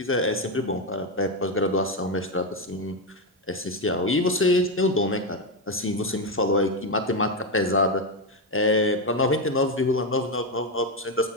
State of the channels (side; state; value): both; normal; correlation 0.08